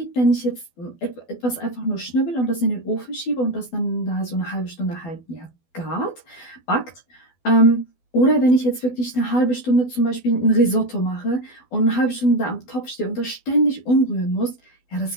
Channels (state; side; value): late; right; 12 ms